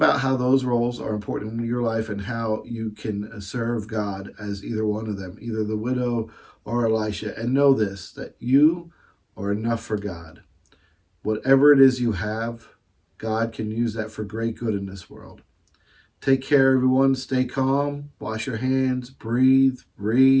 how those roles are important in your life and how you can serve God as either one of them, either the widow or Elisha. And know this, that you are enough for God. Whatever it is you have, God can use that for great good in this world. Take care, everyone. Stay calm. Wash your hands. Breathe.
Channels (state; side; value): identical; both; correlation 1.00